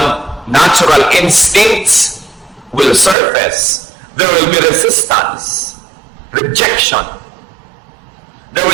natural instincts will surface. There will be resistance, rejection. There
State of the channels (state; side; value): drops out; left; at 3.2 s